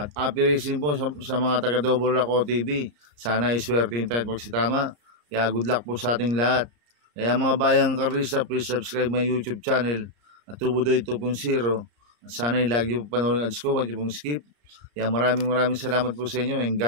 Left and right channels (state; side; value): late; left; 34 ms